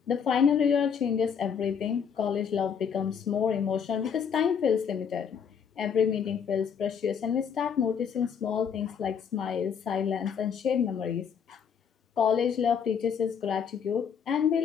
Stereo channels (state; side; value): quieter; right; 7.2 dB